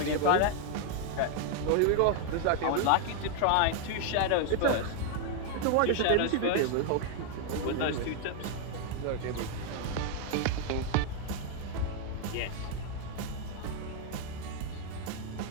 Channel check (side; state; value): both; different; correlation 0.00